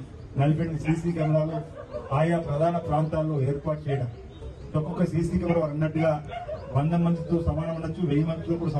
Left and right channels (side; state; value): both; identical; correlation 1.00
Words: 48 సీసీ కెమెరాలు ఆయా ప్రధాన ప్రాంతాల్లో ఏర్పాటు చేయడం. ఒక్కొక్క సీసీ కెమెరా వారు అన్నట్టుగా 100 మందితో సమానం ఉండొచ్చు, 1000 మందితో కూడా